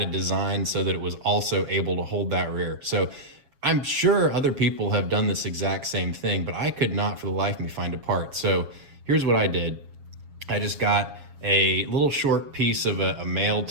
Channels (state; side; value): late; left; 7.3 ms